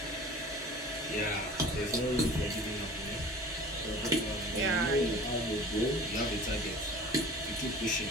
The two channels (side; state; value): both; normal; correlation 0.43